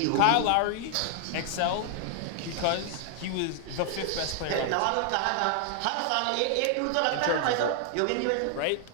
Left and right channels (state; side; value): different; both; correlation 0.00